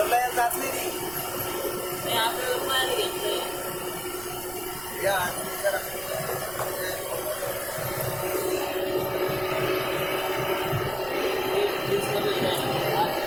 जात नाही ती. नाही आपल्याला पाहायला घेतलंय. या जरा.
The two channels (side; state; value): right; noise; rumble, 18 dB below the sound